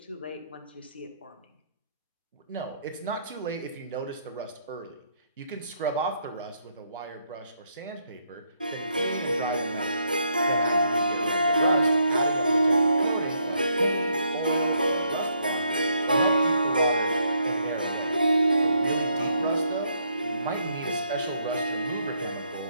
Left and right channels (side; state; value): both; inverted; correlation -0.74